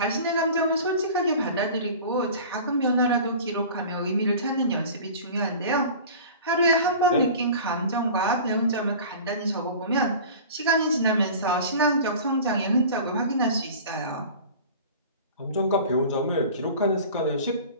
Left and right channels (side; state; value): both; inverted; correlation -0.39